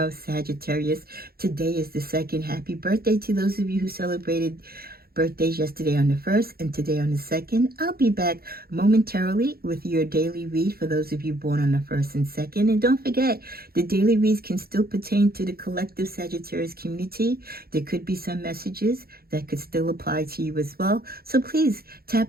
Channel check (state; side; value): late; left; 0.44 ms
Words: Sagittarius. Today is the second. Happy birthday to those of you who celebrated birthdays yesterday on the 1st and today on the 2nd. I'll be back momentarily with your daily read for those of you born on the 1st and 2nd. And don't forget, the daily reads can still pertain to the collective Sagittarius community. There could be some messages that could still apply to you as well. So please